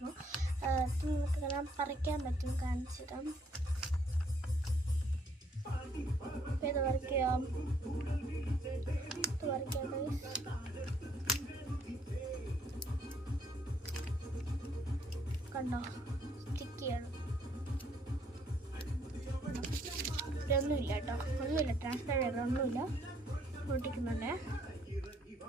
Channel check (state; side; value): normal; both; correlation 0.67